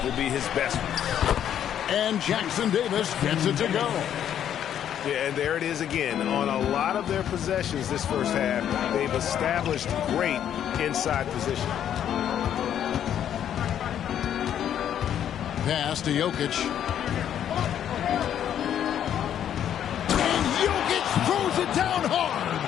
will be his best one. And Jackson Davis gets it to go. Yeah, and there it is again. On a lot of their possessions this first half, they've established great inside position. Pass to Jokic. And Jokic throws it down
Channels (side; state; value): right; quieter; 9.9 dB